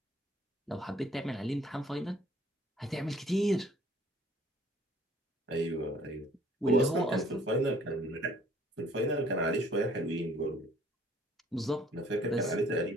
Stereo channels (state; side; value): normal; both; correlation 0.57